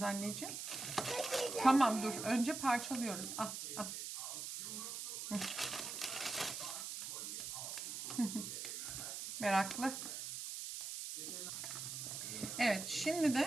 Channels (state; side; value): noise; right; hiss, 5 dB below the sound